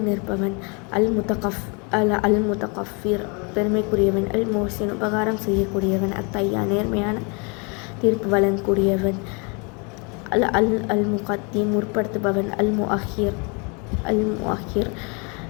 நிற்பவன். அல் முத்தகஃபிர் பெருமைக்குரியவன். அல் மோசின் உபகாரம் செய்யக்கூடியவன். அத்தையா நேர்மையான தீர்ப்பு வழங்கக்கூடியவன். அல் முகத்தீம் முற்படுத்துபவன். அல் முஅஹிர்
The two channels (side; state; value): right; quieter; 32.9 dB